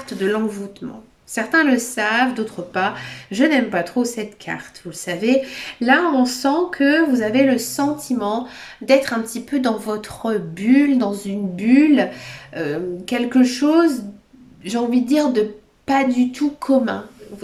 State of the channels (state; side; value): identical; both; correlation 1.00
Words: de l'envoûtement. Certains le savent, d'autres pas. Je n'aime pas trop cette carte, vous le savez. Là, on sent que vous avez le sentiment d'être un petit peu dans votre bulle, dans une bulle. Quelque chose, j'ai envie de dire, de pas du tout commun.